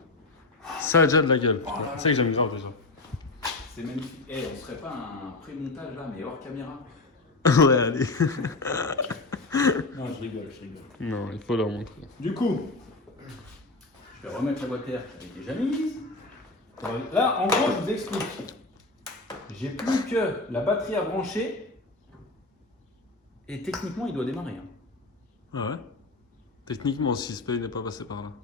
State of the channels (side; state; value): right; quieter; 3.2 dB